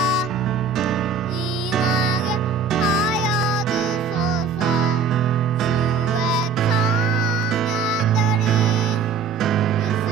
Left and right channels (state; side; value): quieter; left; 5.4 dB